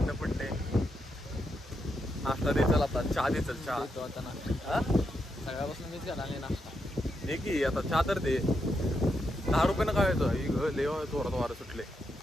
पडले. नाश्ता दे चल आता. चहा दे चल. चहा देतो आता नाश्ता. सगळ्यापासून मीच घाला नाही नाश्ता दे की आता. चहा तर दे. 10 रुपयानं काय येतं लेव थोडा वारं सुटले.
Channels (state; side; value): normal; both; correlation 0.83